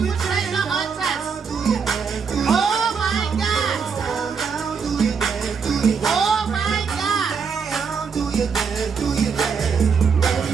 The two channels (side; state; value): left; quieter; 5.9 dB